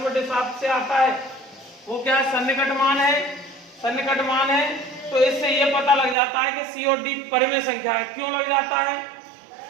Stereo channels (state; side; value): drops out; left; at 6.2 s